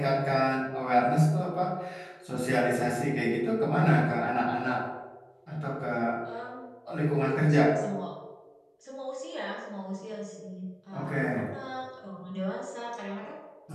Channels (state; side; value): identical; both; correlation 1.00